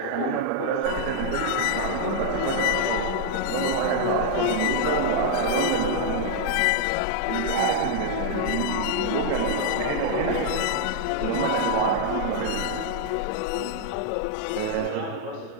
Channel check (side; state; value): both; different; correlation 0.00